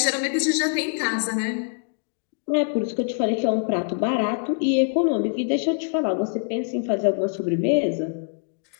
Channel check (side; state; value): right; silent; 62 dB below the other